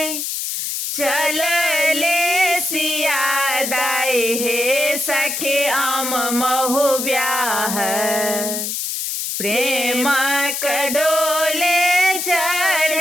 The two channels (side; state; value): left; noise; hiss, 3 dB below the sound